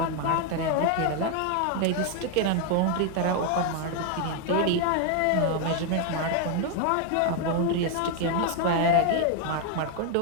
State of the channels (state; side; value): different; both; correlation 0.00